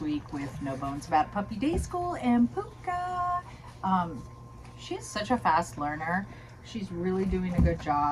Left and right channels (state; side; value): identical; both; correlation 1.00